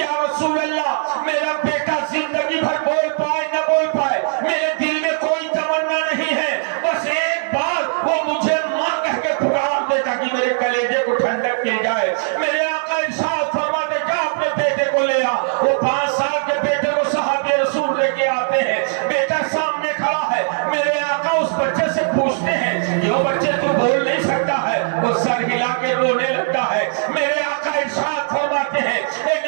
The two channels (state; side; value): silent; left; 66 dB below the other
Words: رسول اللہ میرا بیٹا زندگی بھر بول پائے نہ بول پائے، میرے دل میں کوئی تمنا نہیں ہے، بس ایک بار وہ مجھے ماں کہہ کے پکار دے تاکہ میرے کلیجے کو ٹھنڈک مل جائے. میرے آقا ارشاد فرماتے جا اپنے بیٹے کو لے آ. وہ 5 سال کے بیٹے کو صحابی رسول لے کے آتے ہیں. بیٹا سامنے کھڑا ہے. میرے آقا اس بچے سے پوچھتے ہیں یہ بچے تو بول نہیں سکتا ہے. وہ سر ہلا کے رونے لگتا ہے. میرے آقا ارشاد فرماتے ہیں اے